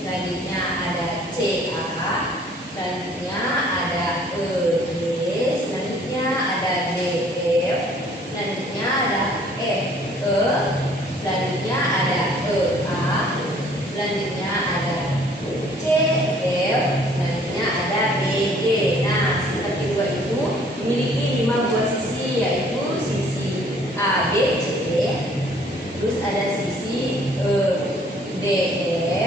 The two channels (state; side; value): normal; both; correlation 0.58